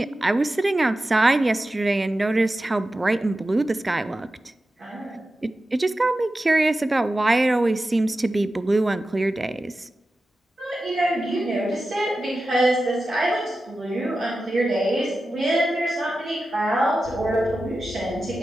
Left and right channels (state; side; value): normal; both; correlation 0.93